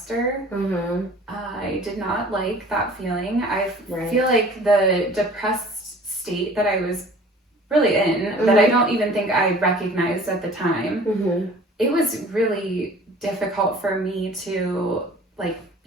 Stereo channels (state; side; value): normal; both; correlation 0.47